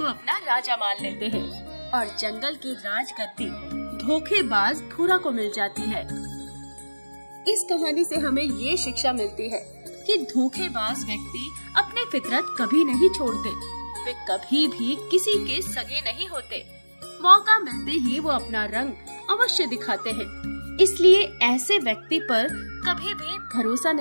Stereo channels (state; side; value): inverted; both; correlation -1.00